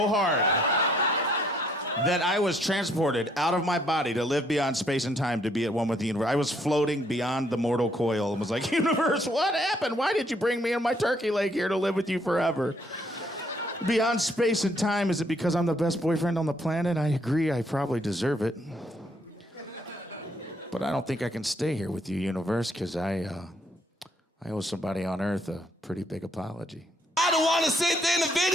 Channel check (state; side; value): normal; both; correlation 0.68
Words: hard that I was transported out of my body to live beyond space and time to be at one with the universe. I was floating beyond the mortal coil and was like, universe, what happened? Why did you bring me and my turkey leg here to live with you forever? Beyond space and time, is it because I'm the best boyfriend on the planet? I agree, I probably deserve it. But I don't think I can stay here with you, universe, because I owe somebody on Earth a pretty big apology. I don't want to sit there in the